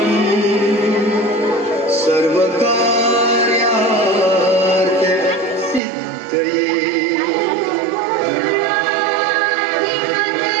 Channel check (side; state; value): left; drops out; at 5.8 s